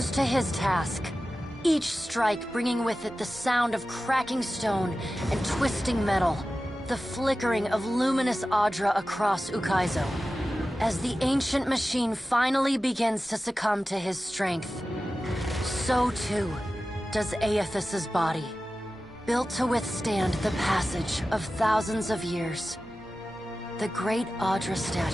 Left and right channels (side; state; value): both; normal; correlation 0.95